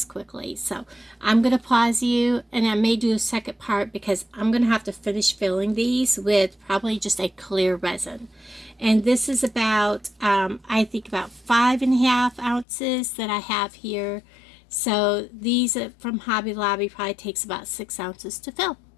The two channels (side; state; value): right; drops out; at 12.7 s